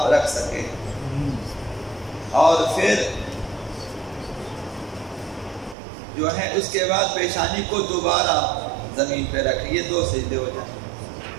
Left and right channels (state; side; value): drops out; left; at 5.8 s